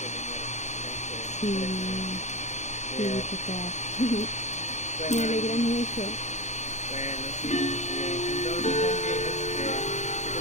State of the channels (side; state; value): right; late; 0.34 ms